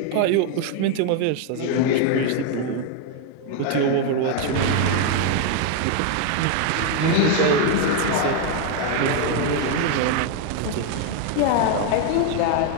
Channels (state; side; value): different; both; correlation 0.01